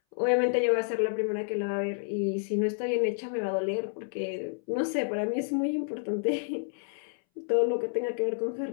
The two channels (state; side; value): silent; right; 58 dB below the other